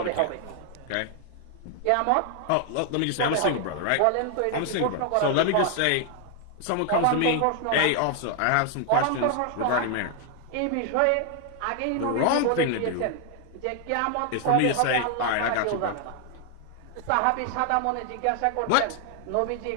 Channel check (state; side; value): different; both; correlation 0.00